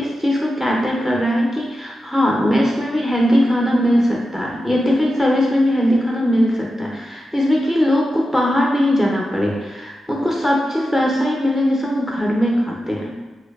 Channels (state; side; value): normal; both; correlation 0.91